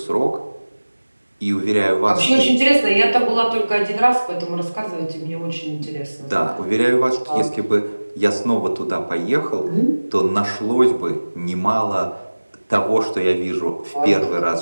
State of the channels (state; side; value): inverted; both; correlation -1.00